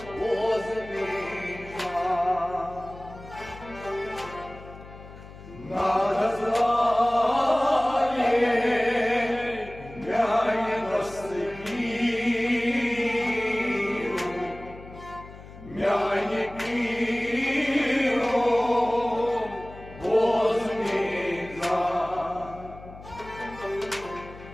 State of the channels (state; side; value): noise; left; hum, 17 dB below the sound